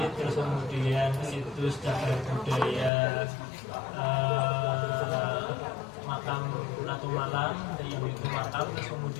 terus kemudian situs cagar budaya makam Ratu Malang yang itu makam, terus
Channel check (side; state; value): right; drops out; at 2.9 s